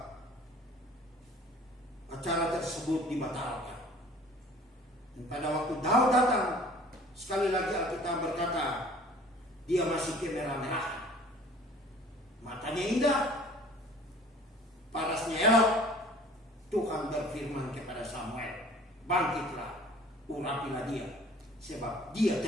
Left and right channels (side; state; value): both; normal; correlation 0.49